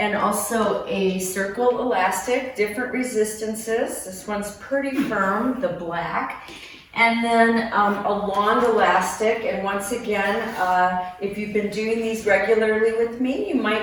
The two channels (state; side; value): identical; both; correlation 1.00